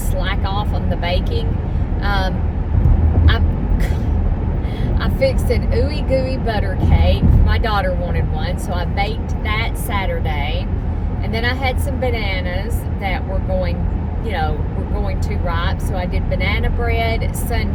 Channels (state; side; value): identical; both; correlation 1.00